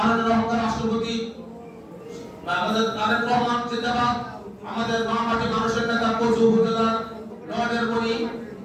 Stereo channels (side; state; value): both; identical; correlation 1.00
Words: অহংকার রাষ্ট্রপতি আমাদের তারেক রহমান জিন্দাবাদ, আমাদের মা মাটি মানুষের নেতা কচুয়া উপজেলার নয়নের মণি